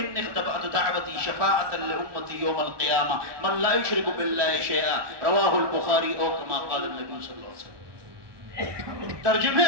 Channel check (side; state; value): left; late; 1.2 ms